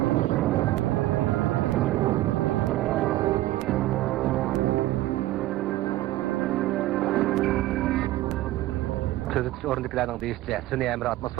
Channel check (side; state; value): left; quieter; 16.4 dB